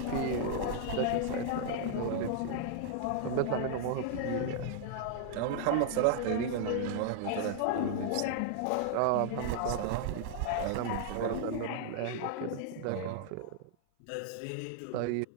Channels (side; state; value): both; different; correlation -0.01